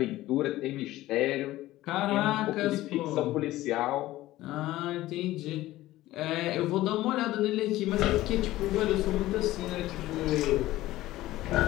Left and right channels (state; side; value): quieter; right; 16.2 dB